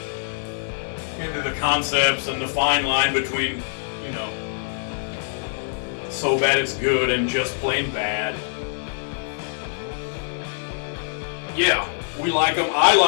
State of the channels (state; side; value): silent; right; digital silence